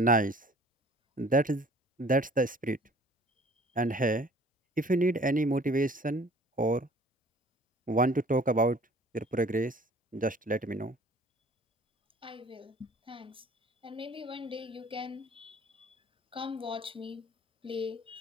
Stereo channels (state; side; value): normal; both; correlation 0.51